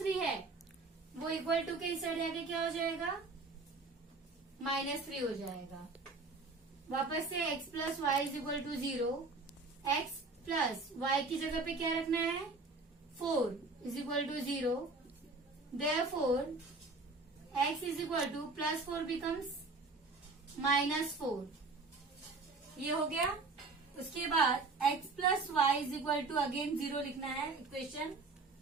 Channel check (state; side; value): quieter; left; 3.7 dB